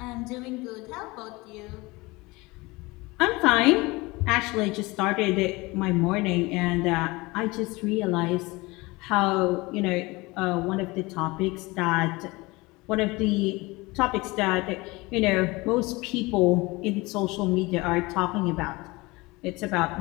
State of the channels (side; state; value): right; quieter; 23.1 dB